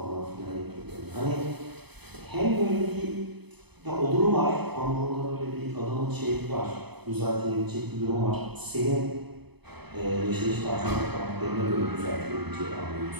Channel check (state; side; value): late; left; 0.98 ms